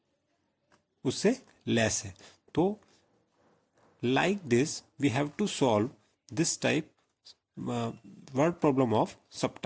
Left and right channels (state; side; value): identical; both; correlation 1.00